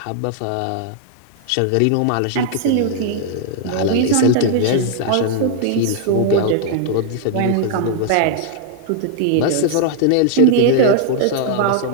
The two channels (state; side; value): different; both; correlation -0.01